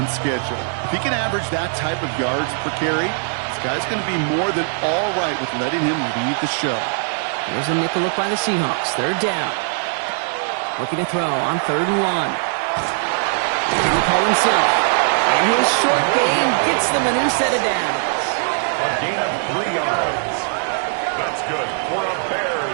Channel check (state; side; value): silent; left; 66 dB below the other